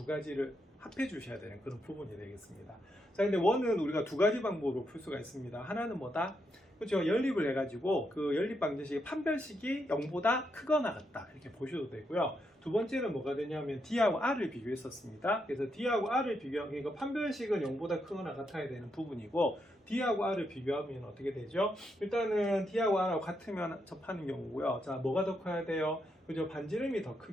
가지를 합해 주셔야 되는 그런 부분이 되겠습니다. 자, 근데 원은 우리가 두 가지 방법으로 풀 수가 있습니다. 하나는 뭐다? 그렇죠. 연립을 해가지고 그 연립 방정식의 판별식이 0보다 크거나 같다 이렇게 보셔도 되고요. 두 번째는 뭐가 되냐면 D하고 R을 비교했었습니다. 그래서 D하고 R을 그러니까 판별식은 0보다 크거나 같아야 되는 부분이고 D하고 R을 비교하면 어떻게 되죠? 일단은 D하고 R하고 같으면 접하는 경우고요. 자, 뭐가 더 커야 돼요? 그죠? 반지름이 더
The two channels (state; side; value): normal; both; correlation 0.81